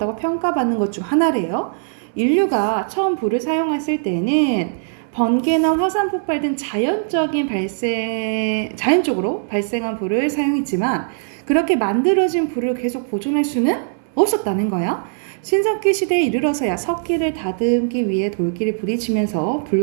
평가받는 것 중 하나래요. 인류가 처음 불을 사용했을 때는 번개나 화산 폭발 등 자연적으로 발생한 불을 사용했지만, 그렇게 만들어진 불을 계속 보존할 수는 없었다는 거야. 신석기 시대에 이르러서야 석기를 다듬기 위해 돌기를 부딪히면서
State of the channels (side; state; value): left; silent; 62 dB below the other